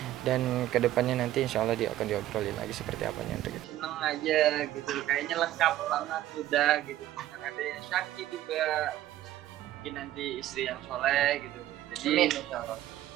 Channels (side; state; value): left; quieter; 13.8 dB